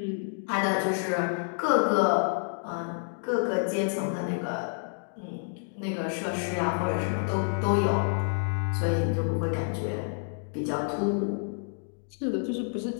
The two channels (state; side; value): silent; right; digital silence